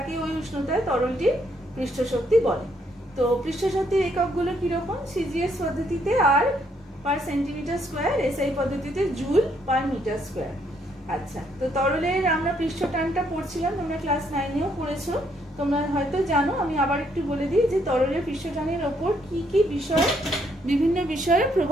ওই উষ্ণতায় তরলটির পৃষ্ঠশক্তি বলে। তো পৃষ্ঠশক্তির এককগুলো কিরকম? সিজিএস পদ্ধতিতে আর পার সেন্টিমিটার স্কোয়ার, এসআই পদ্ধতিতে জুল পার মিটার স্কোয়ার। আচ্ছা, তো তরলের আমরা পৃষ্ঠটানটা পড়ছিলাম, তোমরা ক্লাস 9-এও পড়েছো, তোমরা হয়তো জানো। আমি আবার একটু বলে দিই যে তরলের পৃষ্ঠটানের ওপর কি কি বিষয়, বিভিন্ন বিষয়ের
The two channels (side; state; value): both; normal; correlation 0.72